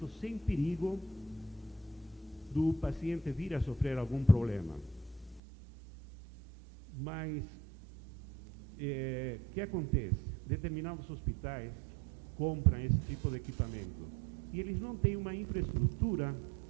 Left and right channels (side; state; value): left; drops out; at 5.4 s